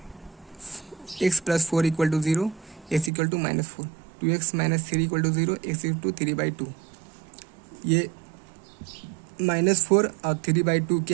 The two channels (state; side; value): drops out; left; at 3.1 s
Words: x plus 4 equal to 0, x equal to minus 4, 2x minus 3 equal to 0, x equal to 3/2। ये -4 और 3/2